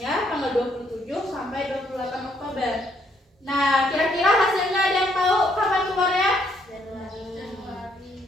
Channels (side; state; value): both; normal; correlation 0.70